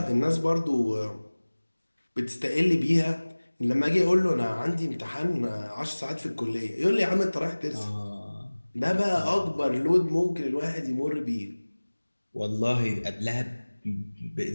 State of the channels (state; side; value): inverted; both; correlation -1.00